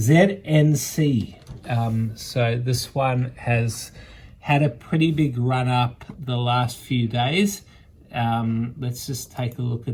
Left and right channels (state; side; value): identical; both; correlation 1.00